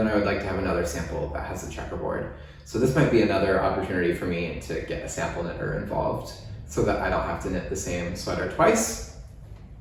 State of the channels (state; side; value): identical; both; correlation 1.00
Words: I would like to have another sample that has a checkerboard. So this might be another opportunity for me to get a sample knitter involved so that I don't have to knit the same sweater twice.